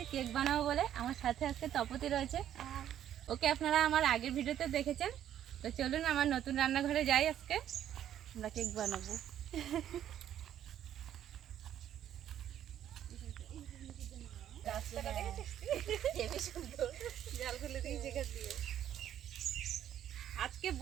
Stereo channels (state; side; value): quieter; left; 10.8 dB